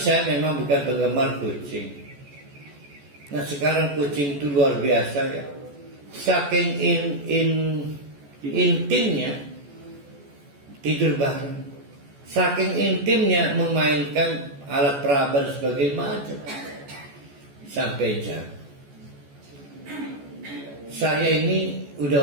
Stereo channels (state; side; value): late; left; 14 ms